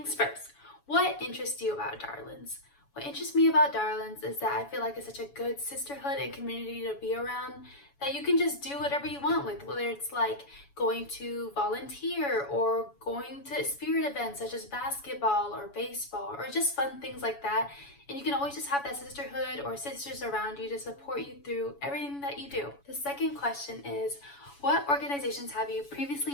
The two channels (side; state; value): right; late; 7.1 ms